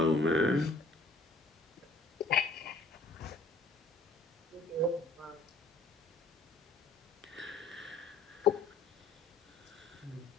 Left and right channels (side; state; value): right; quieter; 3.1 dB